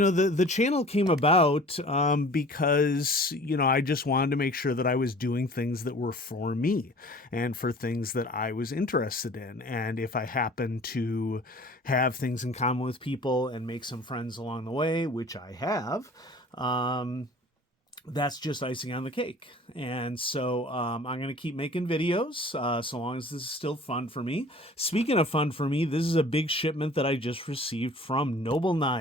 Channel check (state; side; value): normal; both; correlation 0.46